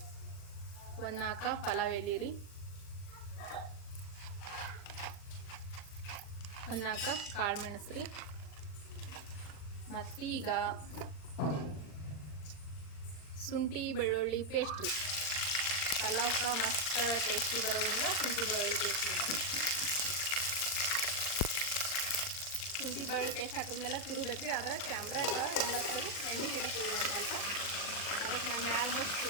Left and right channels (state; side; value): late; right; 40 ms